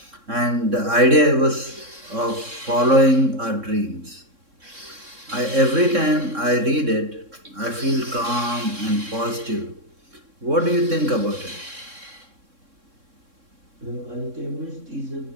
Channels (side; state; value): left; late; 3.6 ms